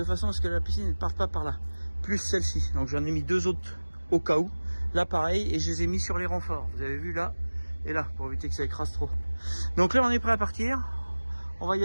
façon à ce que la piscine ne parte pas par là. Plus celle-ci. Donc j'en ai mis deux autres au cas où. Là pareil, et je les ai mis sur les renforts. Vous avez vu là et là, pour éviter que ça écrase trop. Donc là on est prêt à partir. On va y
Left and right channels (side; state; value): both; inverted; correlation -1.00